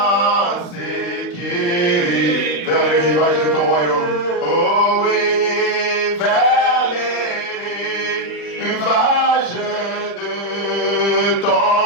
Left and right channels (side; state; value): right; late; 40 ms